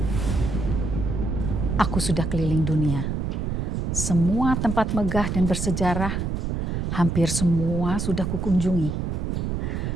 Aku sudah keliling dunia. Semua tempat megah dan bersejarah, hampir semua sudah kukunjungi.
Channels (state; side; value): noise; right; rumble, 1 dB below the sound